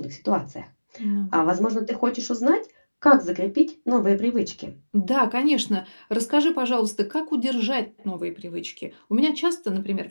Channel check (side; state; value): both; inverted; correlation -1.00